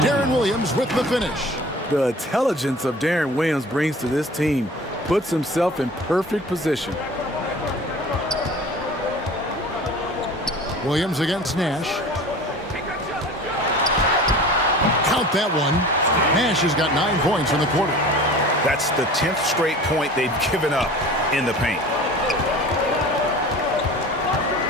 Darren Williams with the finish. The intelligence of Darren Williams brings to this team puts himself in perfect position. Williams against Nash. Count that one. Nash has got 9 points in the quarter. That's the 10th straight point they've given up in the paint.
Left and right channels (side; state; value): both; normal; correlation 0.41